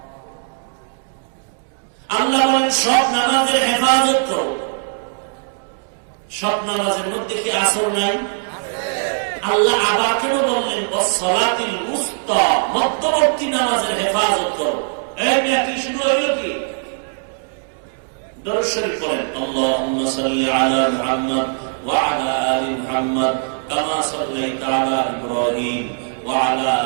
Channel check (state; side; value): silent; left; digital silence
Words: আল্লাহ বলেন সব নামাজের হেফাজত করো। সব নামাজের মধ্যে কি আসর নাই? আল্লাহ আবার কেন বললেন ওয়াস সালাতিল উসতা, মধ্যবর্তী নামাজের হেফাজত করো। এই মিয়া কি শুরু হইল কি? দরুদ শরীফ পড়েন, আল্লাহুম্মা সাল্লি আলা মুহাম্মদ ওয়া আলা আলি মুহাম্মদ কামা সাল্লাইতা আলা ইব্রাহিম ওয়া আলা